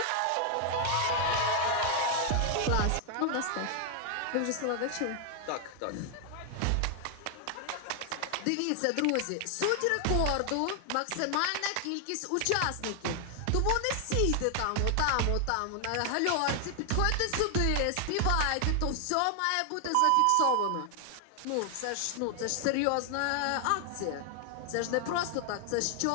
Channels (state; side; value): different; both; correlation 0.00